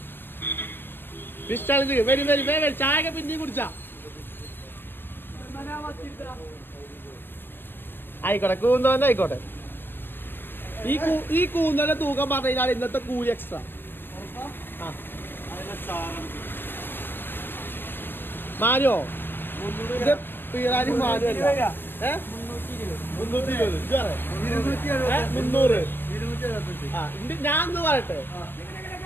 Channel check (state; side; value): late; right; 0.097 ms